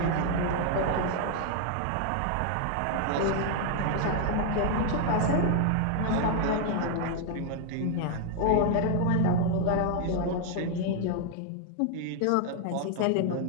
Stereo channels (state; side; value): different; both; correlation 0.00